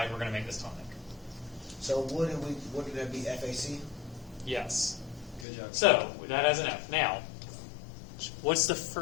we're going to make this tonic. So wouldn't that be FAC? Yes. Good job. So that has an F. Now, what's the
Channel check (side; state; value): right; drops out; at 5.5 s